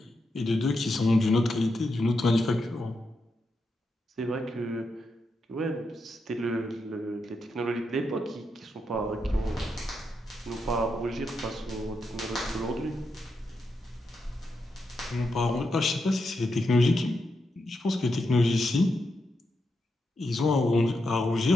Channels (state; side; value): normal; both; correlation 0.84